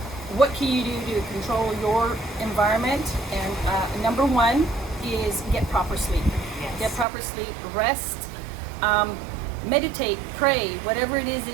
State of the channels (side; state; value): left; drops out; at 7.1 s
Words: what can you do to control your environment, and number one is get proper sleep. Yes. Get proper sleep, rest, meditate, pray, whatever it is